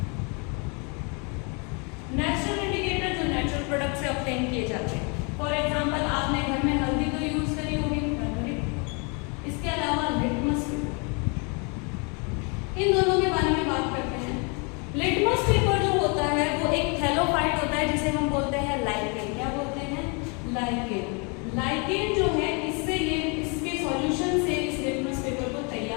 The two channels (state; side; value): quieter; right; 33.9 dB